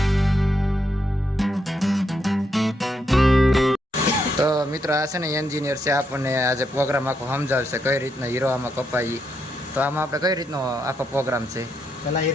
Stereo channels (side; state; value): both; normal; correlation 0.79